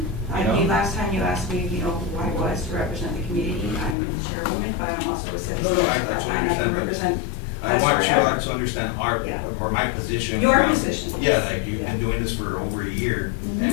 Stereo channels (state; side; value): drops out; right; at 4.0 s